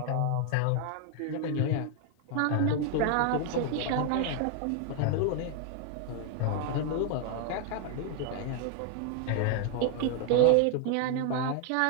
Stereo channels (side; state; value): both; different; correlation 0.00